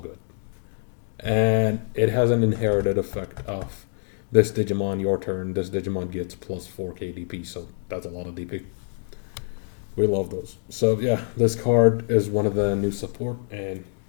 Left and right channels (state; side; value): silent; right; 62 dB below the other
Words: And it has an inherited effect of this Digimon, your turn, this Digimon gets plus 4k DP, so that's a lot of DP. We love those. So yeah, this card is one of the new support, and